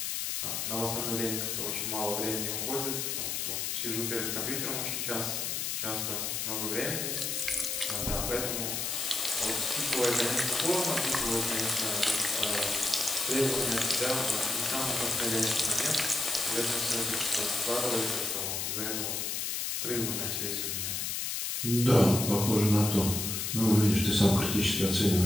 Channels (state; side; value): noise; left; hiss, 1 dB below the sound